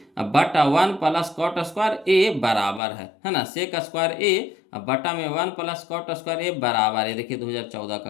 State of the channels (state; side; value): drops out; right; at 2.8 s